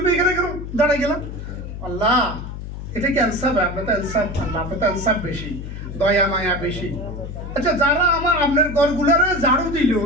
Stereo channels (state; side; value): noise; left; hum, 9 dB below the sound